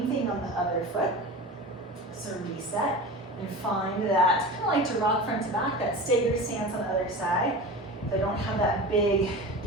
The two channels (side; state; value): both; normal; correlation 0.31